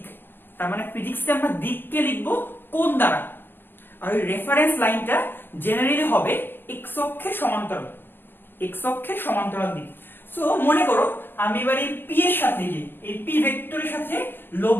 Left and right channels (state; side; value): late; right; 0.10 ms